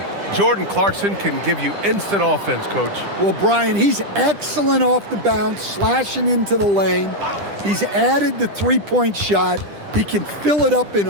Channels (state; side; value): late; left; 10 ms